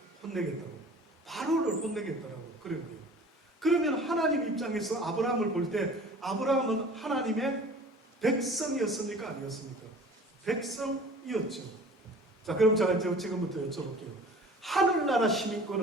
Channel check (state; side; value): normal; both; correlation 0.45